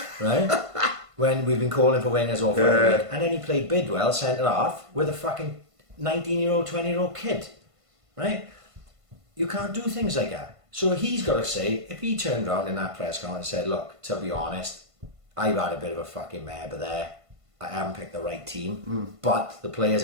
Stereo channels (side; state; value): left; late; 1.5 ms